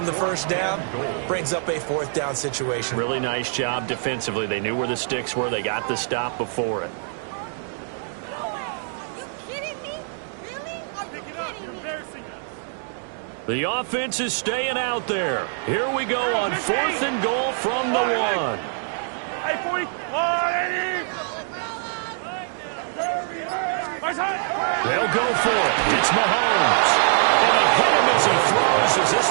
the 1st down brings up a 4th down situation. Really nice job defensively. They knew where the sticks were. They got the stop before it. The offense is staying out there. Here we go on 4th and goal from the 1. They'll go for it. It's Mahomes. And he hit him as he throws, as this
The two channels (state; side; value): silent; left; digital silence